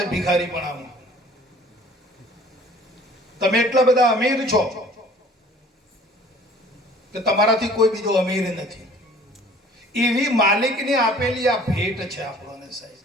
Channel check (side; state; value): both; normal; correlation 0.51